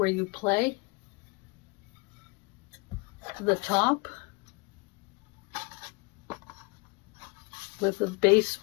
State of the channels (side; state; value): right; quieter; 29.4 dB